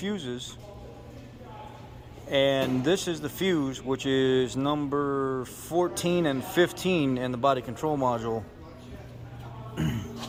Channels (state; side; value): identical; both; correlation 1.00